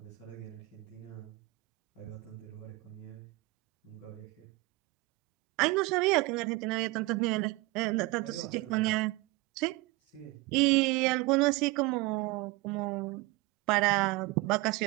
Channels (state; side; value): quieter; left; 22.3 dB